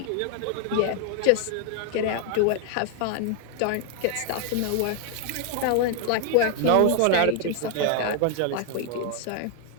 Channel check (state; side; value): different; both; correlation 0.00